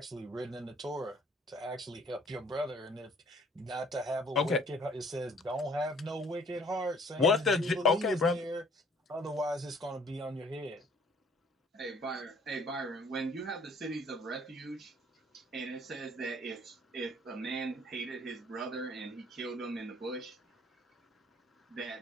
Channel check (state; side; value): normal; both; correlation 0.57